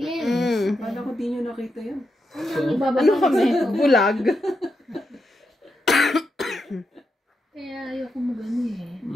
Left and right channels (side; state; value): both; normal; correlation 0.85